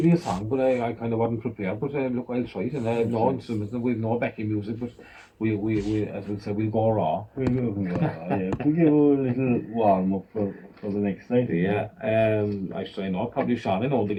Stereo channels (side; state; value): both; identical; correlation 1.00